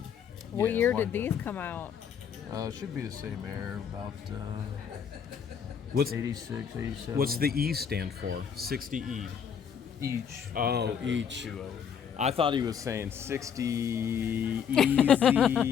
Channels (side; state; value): right; quieter; 7.6 dB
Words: What Yeah, year wind did these come out? Should be the same era, about What's 86, 87. What's the E stand for? 60E. Each. Oh, each. Two of them. I thought he was saying 60